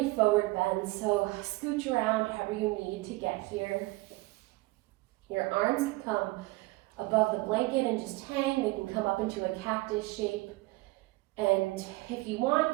forward bends. So scooch around however you need to get here. Your arms can come above the blanket and just hang. They can come up into a cactus shape. And if you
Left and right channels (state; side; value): quieter; left; 21.9 dB